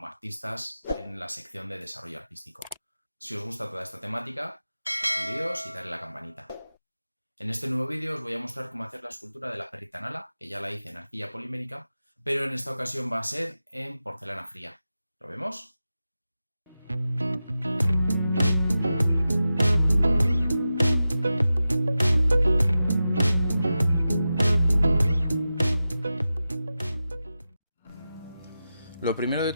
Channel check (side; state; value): both; inverted; correlation -0.93